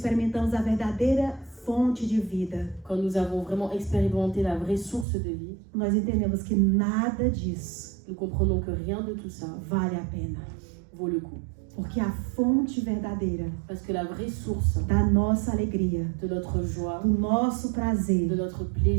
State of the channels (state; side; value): drops out; left; at 5.1 s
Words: a verdadeira fonte de vida, quand nous avons vraiment expérimenté la vraie source de vie, nós entendemos que nada disso nous comprenons que rien de tout ça vale a pena. vaut le coup. Porque a fonte verdadeira Parce que la vraie source da nossa alegria, de notre joie, do nosso prazer, de notre